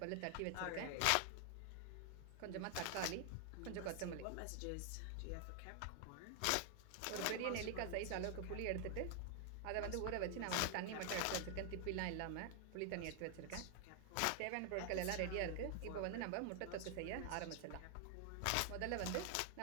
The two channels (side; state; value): both; different; correlation 0.00